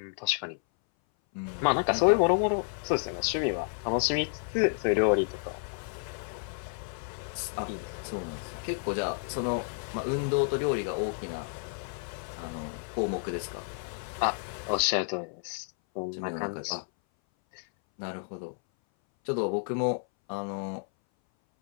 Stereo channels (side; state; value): right; silent; 57 dB below the other